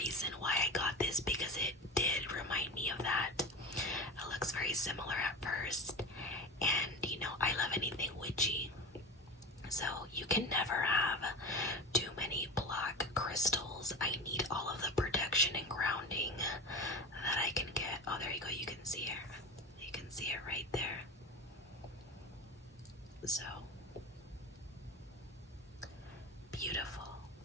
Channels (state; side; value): normal; both; correlation 0.28